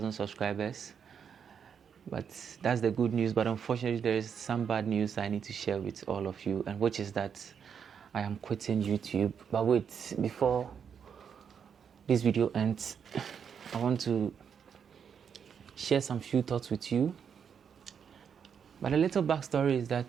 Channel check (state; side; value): quieter; left; 7.3 dB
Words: subscribers, but that's the good news. But unfortunately, there is some bad news I need to share with all of you, and which is that I am quitting YouTube. But wait, before this video ends, I want to share some few thoughts with you. But a little backstory is that